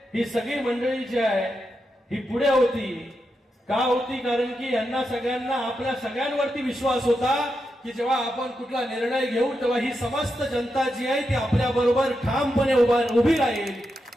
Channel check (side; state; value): both; normal; correlation 0.86